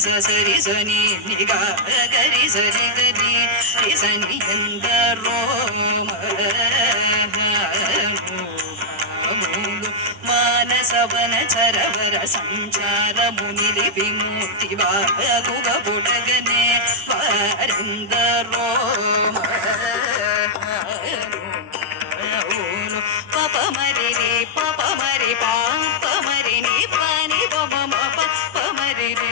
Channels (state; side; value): late; left; 9.9 ms